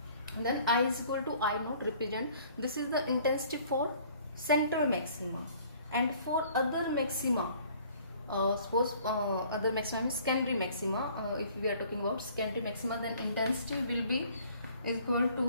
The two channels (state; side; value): inverted; both; correlation -0.55